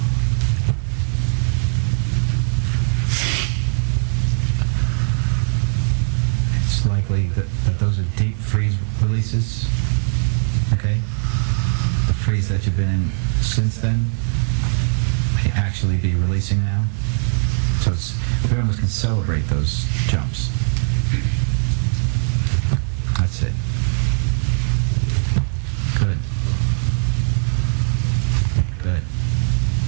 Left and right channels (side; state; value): left; silent; 66 dB below the other